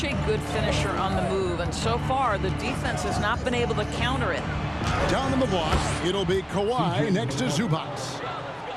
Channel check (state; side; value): identical; both; correlation 1.00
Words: a good finisher on the move, and so far, the defense has not been able to counter it. Down in the block, it'll be Kawhi next to Zubac.